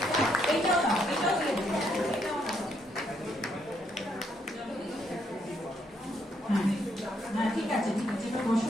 এইটাও দাও, এটাও দিয়ে দেবো, এটাও দাও। হ্যাঁ হ্যাঁ, ঠিক আছে ঠিক আছে, এবার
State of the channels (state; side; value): normal; both; correlation 0.73